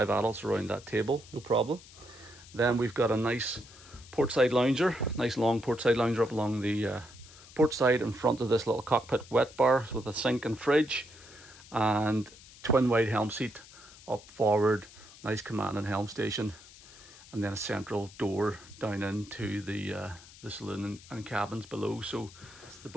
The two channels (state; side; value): noise; left; hiss, 20 dB below the sound